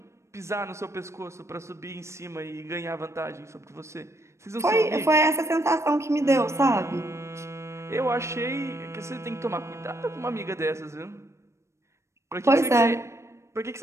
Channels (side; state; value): left; late; 0.13 ms